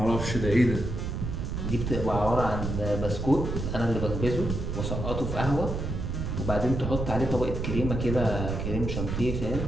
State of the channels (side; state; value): right; noise; rumble, 3 dB below the sound